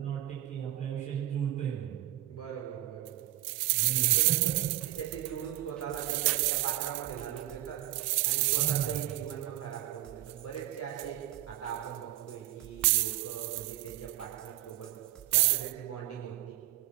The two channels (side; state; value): left; quieter; 15.0 dB